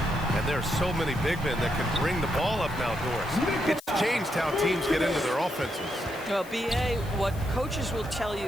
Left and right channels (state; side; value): noise; left; hiss, 20 dB below the sound